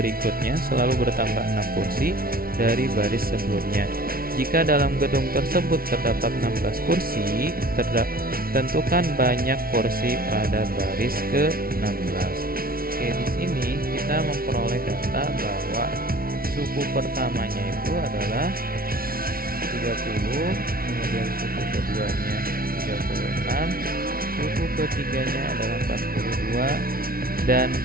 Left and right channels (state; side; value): late; left; 0.43 ms